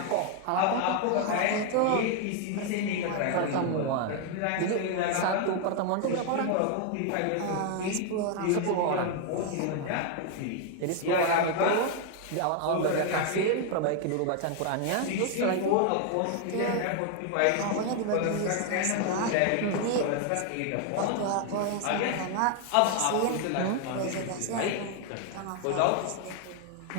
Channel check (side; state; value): both; different; correlation 0.00